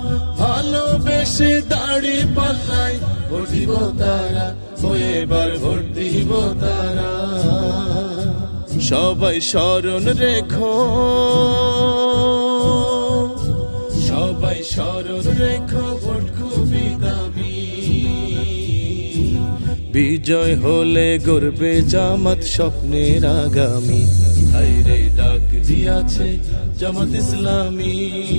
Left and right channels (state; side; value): inverted; both; correlation -1.00